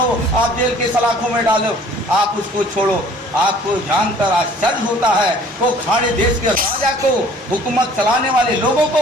आप जेल के सलाखों में डालो, आप उसको छोड़ो। आपको जानकर आश्चर्य होता है वो खाड़ी देश के राजा को, हुकूमत चलाने वाले लोगों को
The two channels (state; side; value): normal; both; correlation 0.53